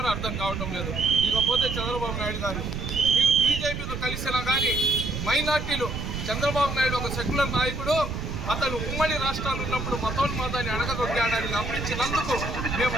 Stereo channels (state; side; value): noise; right; rumble, 5 dB below the sound